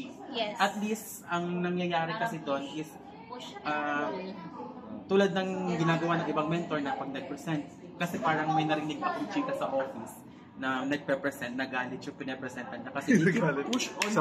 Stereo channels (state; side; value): identical; both; correlation 1.00